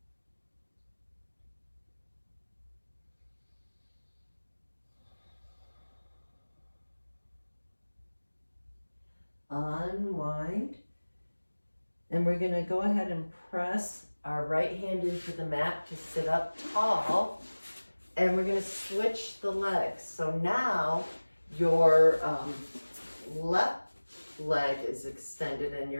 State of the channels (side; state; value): both; inverted; correlation -1.00